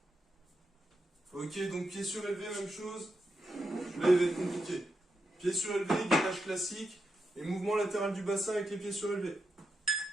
Ok, donc pied surélevé, même chose. Là, il va être compliqué. Pied surélevé, gainage classique. Et mouvement latéral du bassin avec les pieds surélevés.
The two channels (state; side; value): normal; both; correlation 0.86